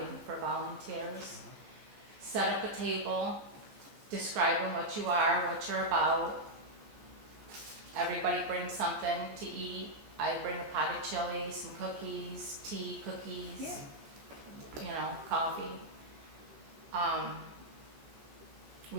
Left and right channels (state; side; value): late; left; 14 ms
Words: for volunteers, set up a table, describing what you are, what you're about. Everybody brings something to eat. I bring a pot of chili, some cookies, tea, cookies, Yeah. you know, coffee.